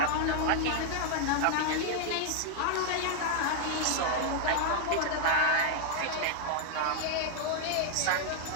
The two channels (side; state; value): both; different; correlation 0.00